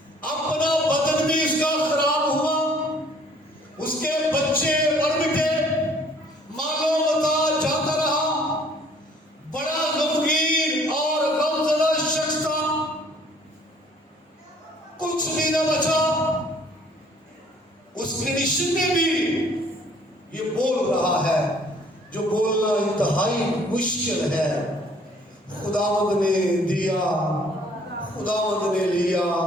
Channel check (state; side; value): normal; both; correlation 0.58